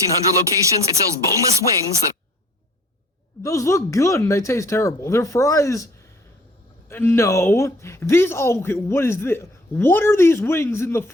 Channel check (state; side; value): normal; both; correlation 0.55